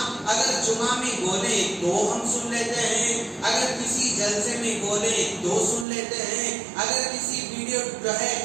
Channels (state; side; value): drops out; left; at 5.9 s